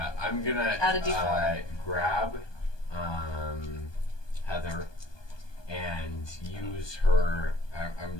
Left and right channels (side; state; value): right; late; 1.2 ms